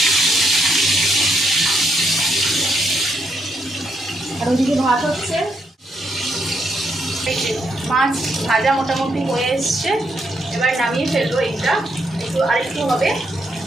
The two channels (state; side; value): normal; both; correlation 0.77